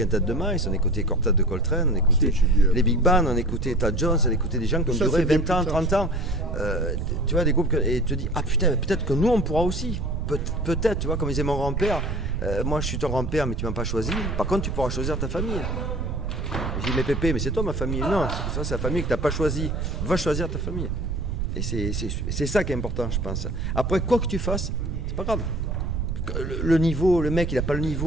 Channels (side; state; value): right; noise; rumble, 2 dB below the sound